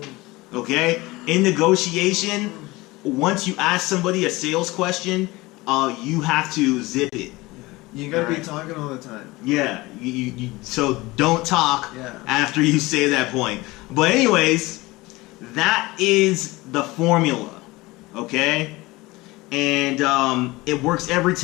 Okay? In negotiation, once you ask somebody a sales question, you have to zip it. You gotta be Alright. talking all the time. Yeah, so don't talk Yeah. after you say that point. But anyways, that is the formula, okay? And it works every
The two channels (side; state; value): right; quieter; 21.1 dB